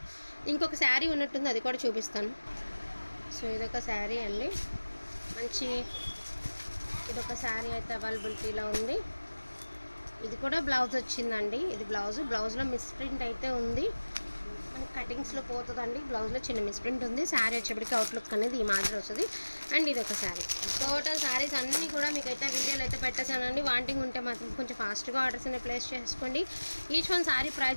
ఇంకొక శారీ ఉన్నట్టుంది, అది కూడా చూపిస్తాను. సో ఇదొక శారీ అండి, మంచి ఇదొక శారీ అయితే అవైలబిలిటీలో ఉంది. ఇది కూడా బ్లౌజ్ వచ్చిందండి. ఇది బ్లౌజ్లో మిస్ప్రింట్ అయితే ఉంది, మనకి కటింగ్స్లో పోతుందండి. బ్లౌజ్లో చిన్న మిస్ప్రింట్ ఉంది. శారీ వచ్చేప్పటికి అవుట్లుక్ అనేది ఈ మాదిరి వస్తుంది. అండ్ ఇది ఒక శారీ. టోటల్ శారీస్ అన్నీ కూడా మీకు అయితే వీడియోలు అయితే పెట్టేసానండి. వాంటింగ్ ఉంటే మాత్రం కొంచెం ఫాస్ట్గా ఆర్డర్స్ అనేది ప్లేస్ చేసుకోండి. ఈచ్ వన్ శారీ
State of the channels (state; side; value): inverted; both; correlation -1.00